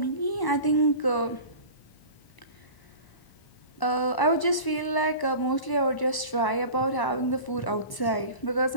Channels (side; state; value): right; late; 1.0 ms